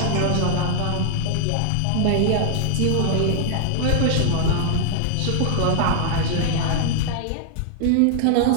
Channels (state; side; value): different; both; correlation -0.01